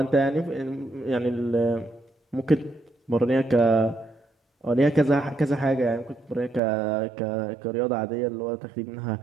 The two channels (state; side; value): drops out; left; at 6.6 s